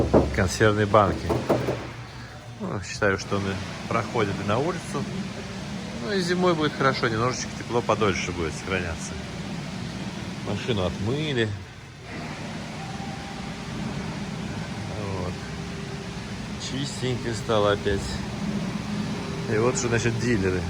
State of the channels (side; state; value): both; identical; correlation 1.00